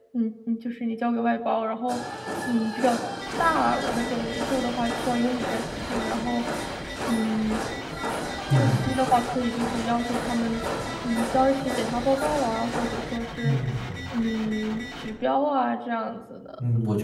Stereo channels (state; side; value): identical; both; correlation 1.00